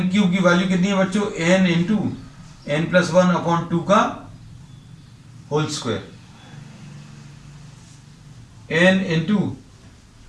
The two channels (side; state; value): both; identical; correlation 1.00